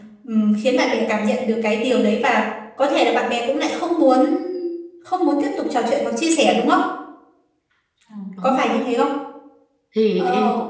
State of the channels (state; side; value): identical; both; correlation 1.00